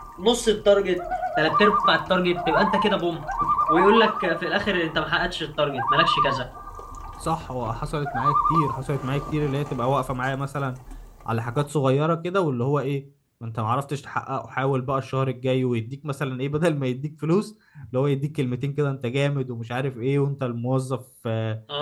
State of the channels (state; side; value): identical; both; correlation 1.00